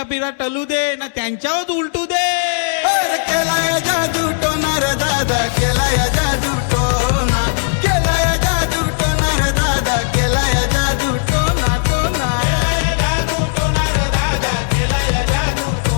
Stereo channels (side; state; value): right; silent; 64 dB below the other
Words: पिरा टलू दे ना त्यांच्यावर उलटू दे. केलाय जादू टोनार दादा, केलाय